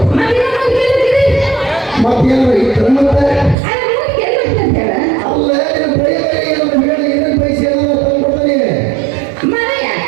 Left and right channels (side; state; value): left; drops out; at 3.6 s